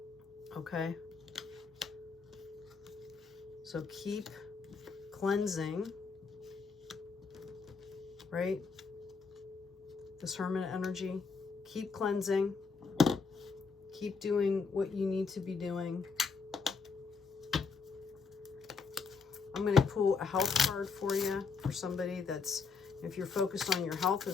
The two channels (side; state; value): right; quieter; 5.0 dB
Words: okay. So keep cleansing, right? This Hermit energy, keep cleansing, keep doing what you need to be doing. I'm going to pull a health card for you, for somebody that's, if you're focused on your health